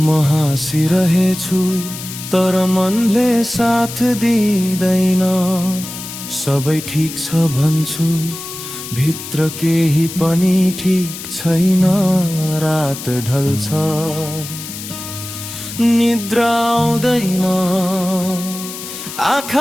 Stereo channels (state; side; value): noise; left; hiss, 10 dB below the sound